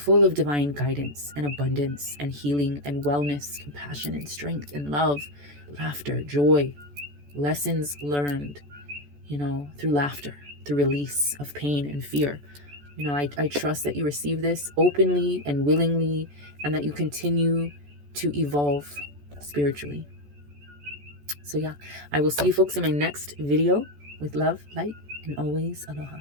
of divine guidance and abundance and healing and wellness, compassion and strength and love, laughter, joy, lessons learned, through laughter, through release of pain and fear. I trust that you receive this openly and willingly, and that you continue to evolve spiritually. So yeah, I will see you folks in my next video. With love, light, and always aloha.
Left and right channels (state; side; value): late; left; 14 ms